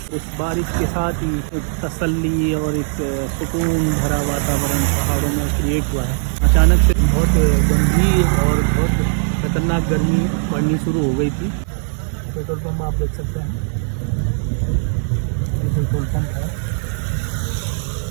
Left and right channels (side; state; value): left; silent; 67 dB below the other